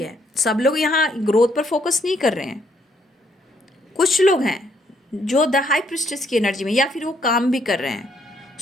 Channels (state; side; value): normal; both; correlation 0.70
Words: है, सब लोग यहाँ ग्रोथ पर फोकस नहीं कर रहे हैं। कुछ लोग हैं जो द हाई प्रिस्टेस की एनर्जी में, या फिर वो काम भी कर रहे हैं,